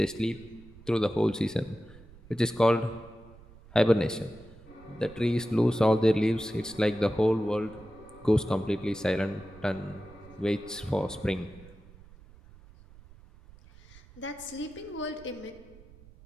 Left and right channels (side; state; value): right; noise; rumble, 22 dB below the sound